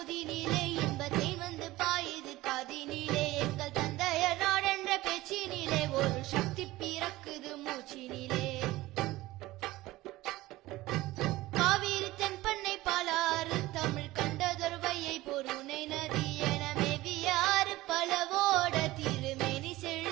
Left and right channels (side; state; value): left; quieter; 18.0 dB